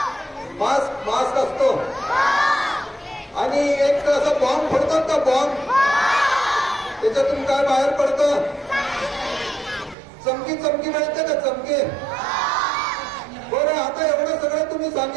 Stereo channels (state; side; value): drops out; left; at 10.0 s